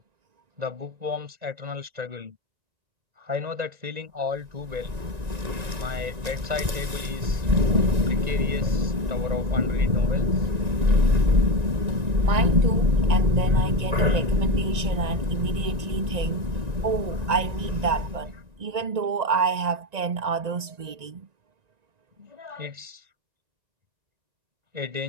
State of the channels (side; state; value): left; late; 1.9 ms